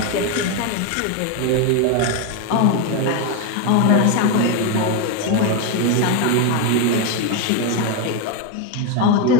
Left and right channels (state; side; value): different; both; correlation 0.02